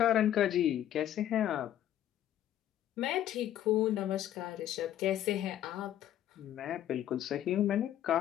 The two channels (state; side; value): quieter; right; 11.7 dB